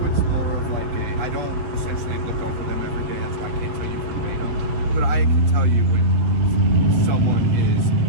it's more of like I don't essentially look over them every day, that's why I can't tell you verbatim. But I can tell you when someone is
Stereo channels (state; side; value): late; left; 7.9 ms